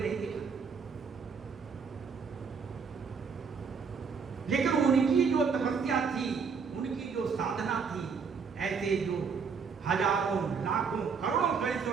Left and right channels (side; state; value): left; quieter; 5.8 dB